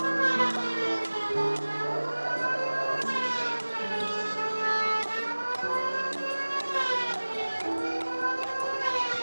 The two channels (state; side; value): inverted; both; correlation -1.00